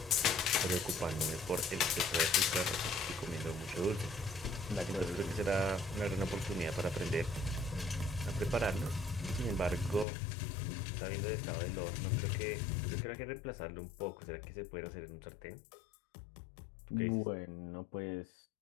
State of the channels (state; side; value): drops out; right; at 10.1 s